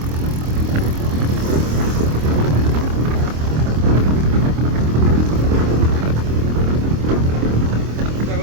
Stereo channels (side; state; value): left; late; 26 ms